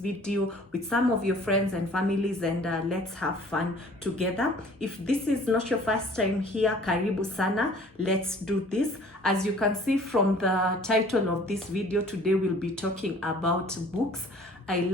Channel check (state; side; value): normal; both; correlation 0.51